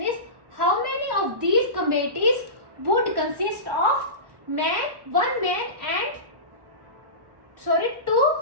is how many of these committees would consist of one man and 2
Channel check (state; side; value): late; left; 1.1 ms